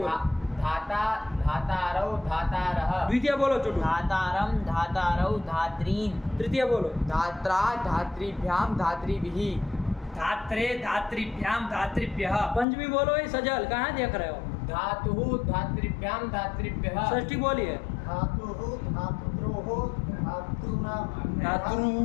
धाता धातारौ धातारः। द्वितीय बोलो चुटू। धातारम धातारौ धात्रीन्। तृतीय बोलो। धात्रा धात्रीभ्याम धात्रीभिः। धात्रे धात्रीभ्याम धात्रीभ्यः। पंचमी बोलो, ये सजल कहाँ देख रहे हो? धातुः धात्रीभ्याम धात्रीभ्यः। षष्ठी बोलिए। धातुः धातुद्रोः धातृ।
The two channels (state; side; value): drops out; right; at 12.7 s